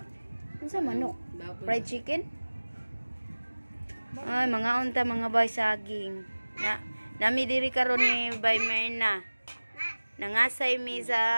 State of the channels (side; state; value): both; inverted; correlation -1.00